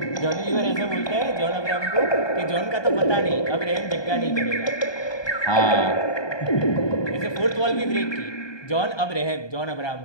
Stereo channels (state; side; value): late; right; 1.2 ms